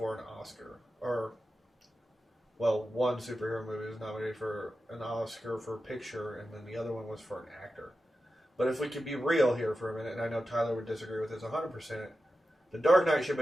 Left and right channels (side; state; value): both; normal; correlation 0.92